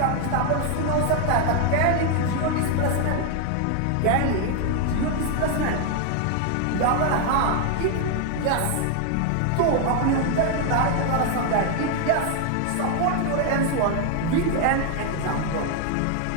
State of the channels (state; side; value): different; both; correlation 0.00